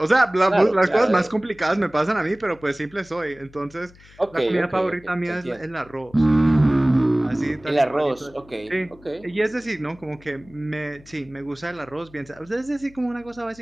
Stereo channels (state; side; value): noise; left; hum, 24 dB below the sound